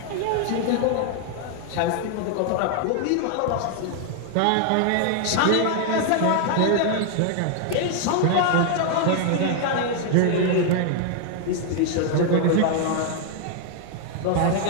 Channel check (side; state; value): both; different; correlation 0.00